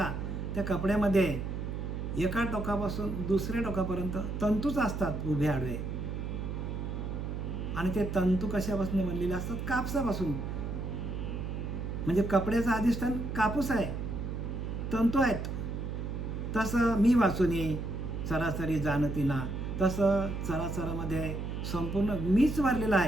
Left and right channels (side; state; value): right; noise; hum, 4 dB below the sound